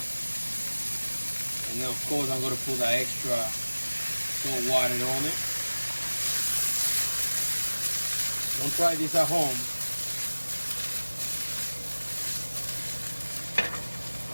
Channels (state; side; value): inverted; both; correlation -1.00